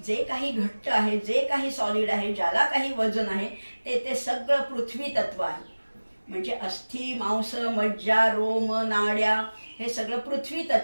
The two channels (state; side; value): inverted; both; correlation -1.00